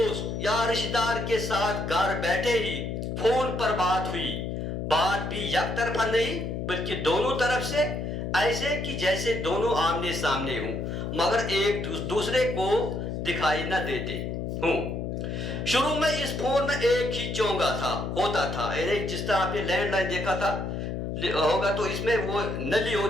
या रिश्तेदार के साथ घर बैठे ही फोन पर बात हुई। बात भी एक तरफा नहीं बल्कि दोनों तरफ से, ऐसे कि जैसे दोनों आमने सामने हों मगर एक दूसरे को दिखाई न देते हों। शुरू में इस फोन में एक ही चोंगा होता था, यानी जिस तरह आपने लैंडलाइन देखा था होगा, तो इसमें वो नली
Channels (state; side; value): noise; left; hum, 4 dB below the sound